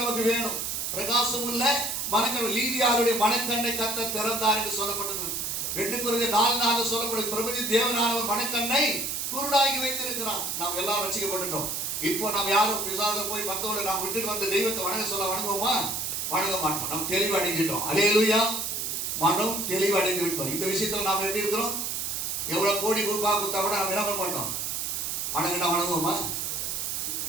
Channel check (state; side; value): noise; right; hiss, 2 dB below the sound